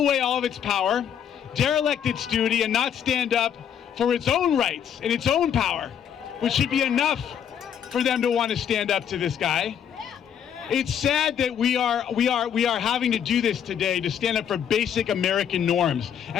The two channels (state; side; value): quieter; right; 8.8 dB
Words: all of its power, derelict its duty, and not stand up for its own rights and its own power, which should be enough for them to want to stand up to this guy. It's sad that we are having to do this today, to stand up for basic American norms,